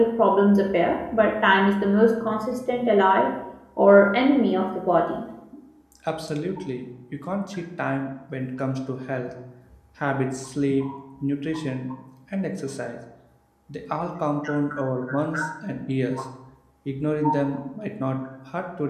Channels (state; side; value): identical; both; correlation 1.00